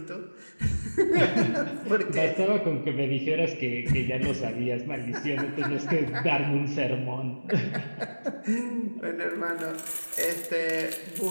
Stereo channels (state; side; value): inverted; both; correlation -1.00